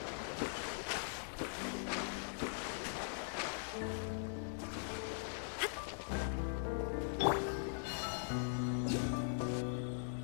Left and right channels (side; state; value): right; silent; digital silence